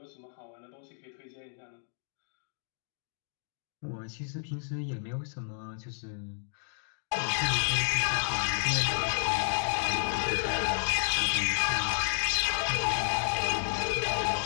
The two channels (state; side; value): silent; right; digital silence